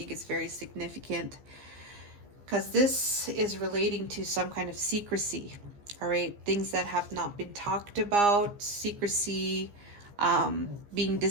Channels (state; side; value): late; left; 15 ms